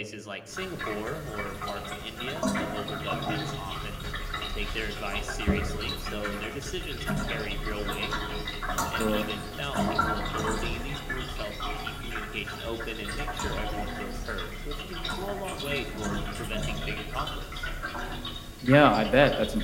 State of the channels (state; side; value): identical; both; correlation 1.00